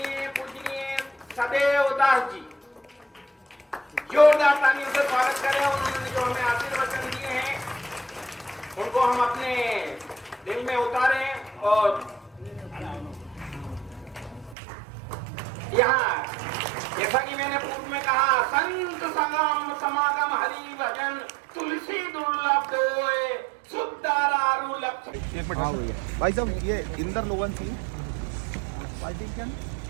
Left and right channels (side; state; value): left; drops out; at 14.6 s